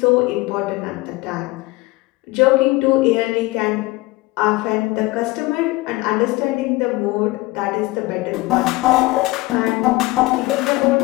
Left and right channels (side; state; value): right; quieter; 21.0 dB